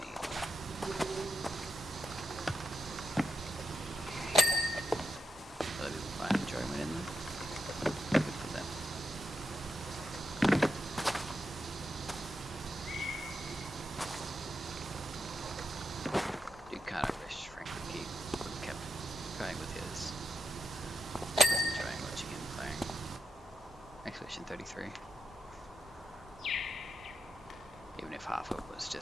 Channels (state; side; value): normal; both; correlation 0.85